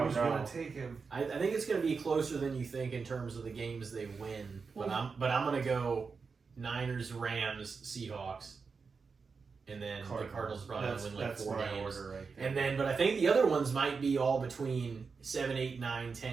Who's no. gonna take him? I think it's gonna be closer than you think in terms of the games they win. But I'm gonna go Niners, Rams, Seahawks, and then the Cardinals probably That's, win like that's 4 my games. order right there. And then, but I think the other ones might be all between 7, 8, 9,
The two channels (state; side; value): quieter; left; 5.1 dB